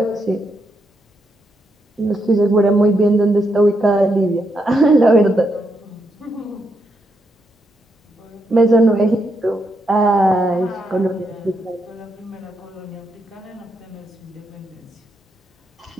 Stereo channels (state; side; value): normal; both; correlation 0.81